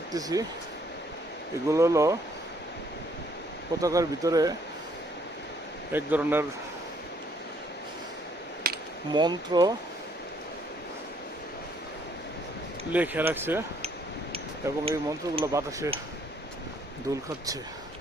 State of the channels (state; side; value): normal; both; correlation 0.66